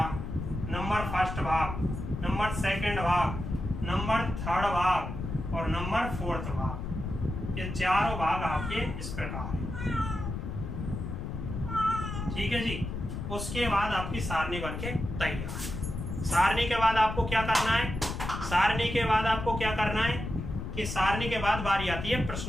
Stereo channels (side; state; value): left; noise; rumble, 6 dB below the sound